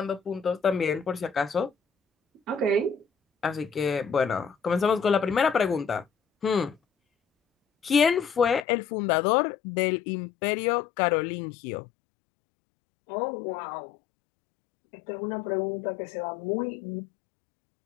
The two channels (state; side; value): drops out; right; at 8.7 s